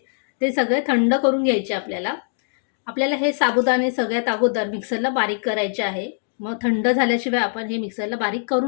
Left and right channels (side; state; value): right; silent; digital silence